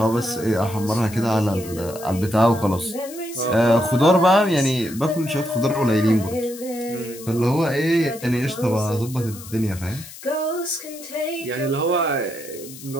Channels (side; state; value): left; noise; hiss, 16 dB below the sound